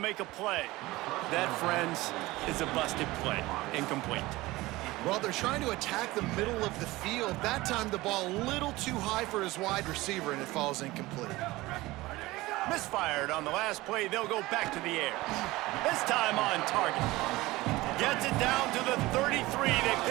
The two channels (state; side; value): quieter; left; 19.5 dB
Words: make a play. That, friends, is a busted play. Incomplete. Well, they're trying to attack the middle of the field. That time, the ball a little too high for his wide receiver, and it falls incomplete. Misfired on the last play. They'll go back to the air. This time on target. Gets it down to the 33. They